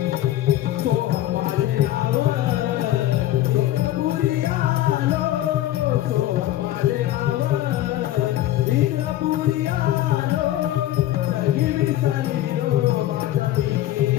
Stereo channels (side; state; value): right; quieter; 13.8 dB